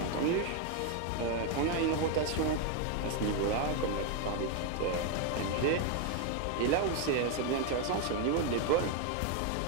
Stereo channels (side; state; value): both; different; correlation 0.01